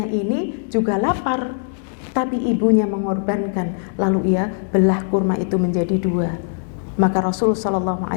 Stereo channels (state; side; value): silent; right; digital silence